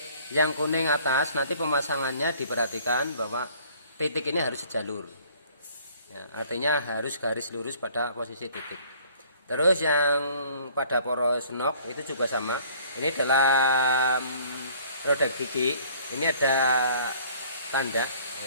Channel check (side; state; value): both; inverted; correlation -0.55